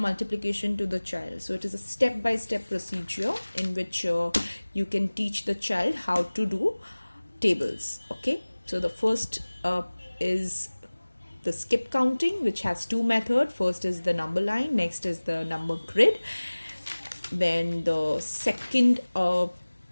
to the child. So it is a step-by-step procedure in which you can teach the child how to do tables. Okay, so the first is the skip counting, which has 2 methods. First is the number line, next is the number grid. Then the second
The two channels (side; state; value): both; inverted; correlation -1.00